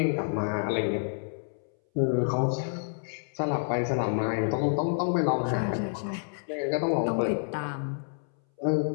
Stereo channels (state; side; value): silent; right; 59 dB below the other